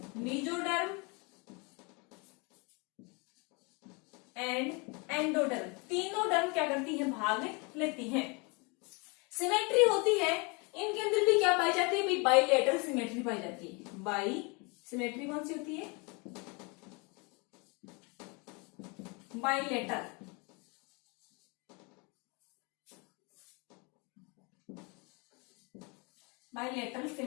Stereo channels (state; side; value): quieter; right; 30.3 dB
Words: मेसोडर्म एंड एंडोडर्म, तीनों डर्म क्या करती हैं, भाग लेती हैं। सिमेट्री होती है, इनके अंदर भी क्या पाई जाती है, बाइलेटरल सिमेट्री पाई जाती है। बाई सिमेट्री कौन सी होती है, बाइलेटरल। बाइलेटरल